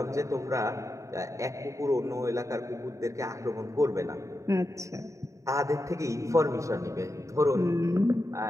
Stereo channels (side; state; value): left; late; 0.15 ms